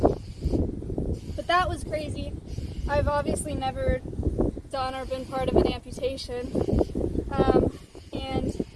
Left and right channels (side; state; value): both; identical; correlation 1.00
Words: But that was crazy. I've obviously never done or been part of an amputation. And